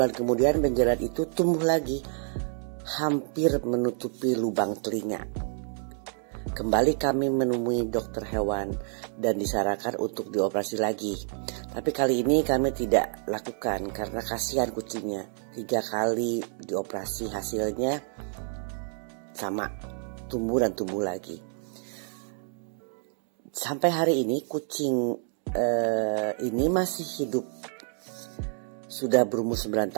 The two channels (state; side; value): silent; left; 57 dB below the other